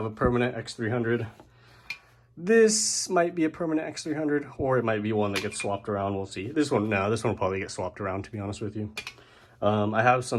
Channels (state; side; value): identical; both; correlation 1.00